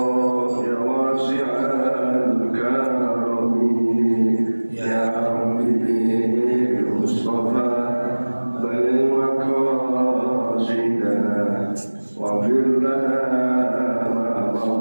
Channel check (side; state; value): both; inverted; correlation -1.00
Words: ya wasi'al karami. Ya Rabbi bil Mustafa balli maqasidana waghfir lana